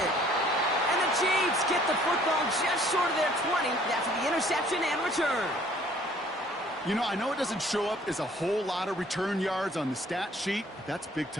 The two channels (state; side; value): normal; both; correlation 0.57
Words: And the Chiefs get the football just short of their 20 after the interception and return. You know, I know it doesn't show up as a whole lot of return yards on the stat sheet, but that's big